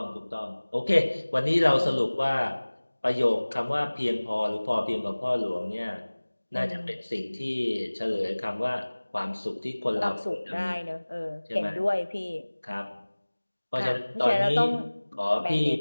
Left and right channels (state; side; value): inverted; both; correlation -1.00